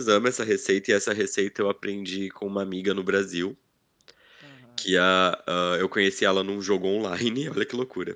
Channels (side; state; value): both; identical; correlation 1.00